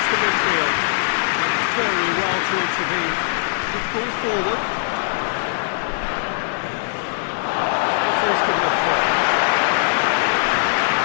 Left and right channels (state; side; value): silent; right; digital silence